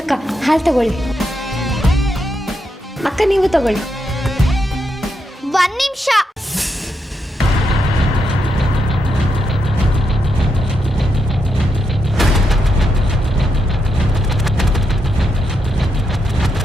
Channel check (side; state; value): both; normal; correlation 0.82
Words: ಹಾಲು ತಗೊಳ್ಳಿ. ಅಕ್ಕ, ನೀವು ತಗೊಳ್ಳಿ. 1 ನಿಮಿಷ.